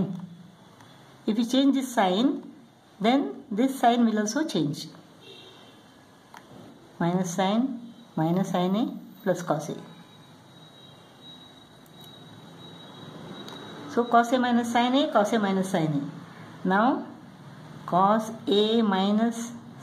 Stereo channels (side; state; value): both; identical; correlation 1.00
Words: If we change this sign, then this sign will also change. Minus sin A plus cos A. So cos A minus sin A, cos A minus sin A. Now cos A minus